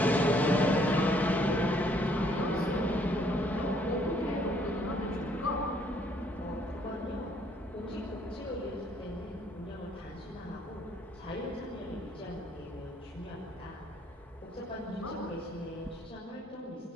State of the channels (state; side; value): normal; both; correlation 0.65